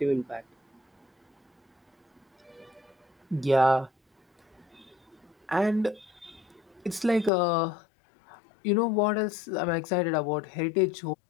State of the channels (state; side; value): drops out; right; at 7.3 s